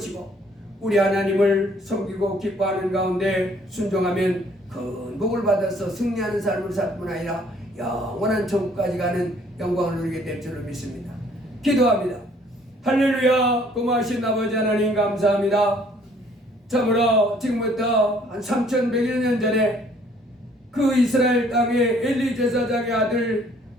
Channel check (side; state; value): both; normal; correlation 0.61